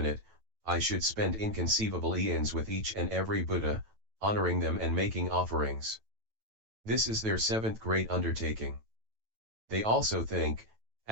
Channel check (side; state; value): left; late; 9.1 ms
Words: I should spend inconceivable eons with each and every Buddha, honoring them and making offerings. This is their seventh great undertaking. They also think,